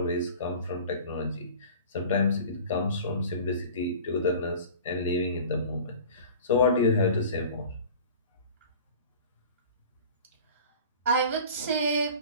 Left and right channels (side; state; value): both; inverted; correlation -0.41